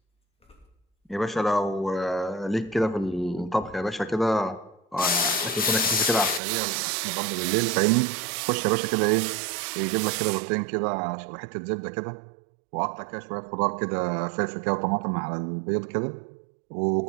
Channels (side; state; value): left; drops out; at 6.4 s